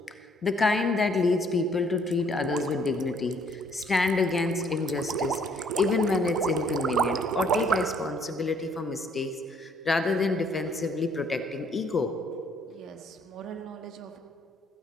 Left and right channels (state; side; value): normal; both; correlation 0.64